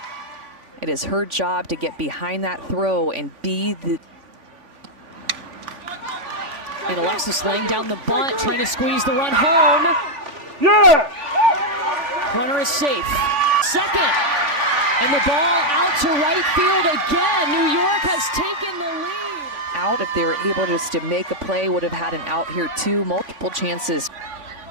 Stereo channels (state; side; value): late; left; 3.5 ms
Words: It is her job to get behind that throw and be the... And Alexis laying down the bunt, trying to squeeze the run home. Yeah! Runner is safe. Second. And the ball out to right field again. New York has taken the lead. Out, if they were able just to make a play, would have had an out here too. Multiple chances.